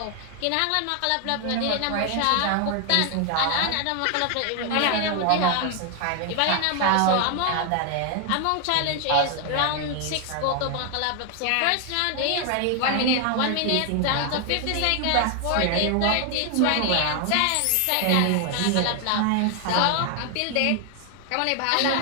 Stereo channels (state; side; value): different; both; correlation 0.00